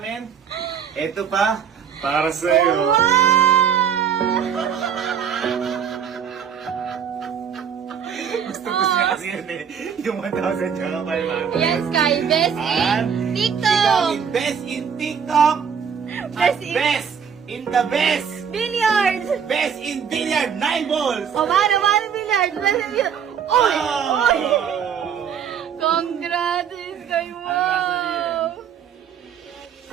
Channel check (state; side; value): quieter; left; 7.6 dB